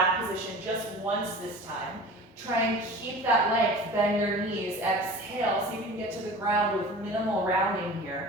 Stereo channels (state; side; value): normal; both; correlation 0.38